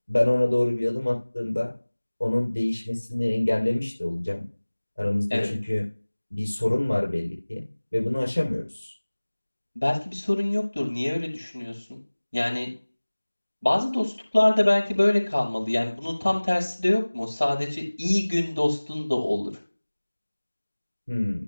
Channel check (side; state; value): both; inverted; correlation -1.00